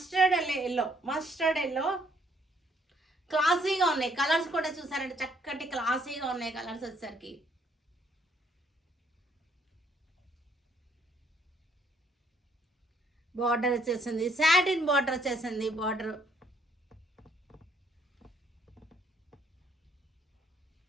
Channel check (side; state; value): both; normal; correlation 0.68